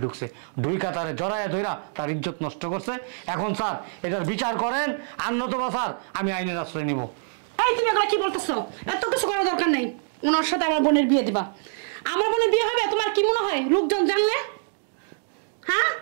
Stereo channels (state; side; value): silent; left; digital silence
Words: ঢুকছে, ঢুইকা তারে জড়াইয়া ধইরা তার ইজ্জত নষ্ট করছে। এখন স্যার এটার বিচার করেন, আর নতুবা স্যার আমি আইনের আশ্রয় নিব। এই তুমি এগুলো কি বলতেছো? এত কিছু করার দরকার নেই। ওনার সাথে আমার বোনের বিয়ে দিবা। আমার বোনের বিয়ে হবে তোমার কি মনে হয় লোকজন জানলে? হ্যাঁ